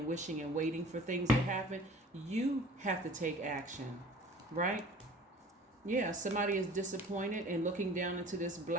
wishing and waiting for things to happen. You have to take action, right? Yeah, somebody is disappointed and looking down into this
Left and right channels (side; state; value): both; normal; correlation 0.46